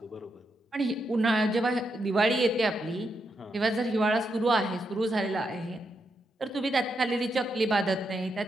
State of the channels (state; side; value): normal; both; correlation 0.83